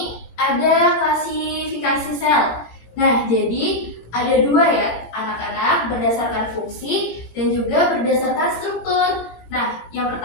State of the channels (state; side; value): late; right; 18 ms